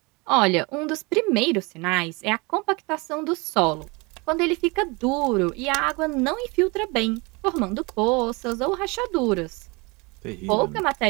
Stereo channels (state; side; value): quieter; left; 27.3 dB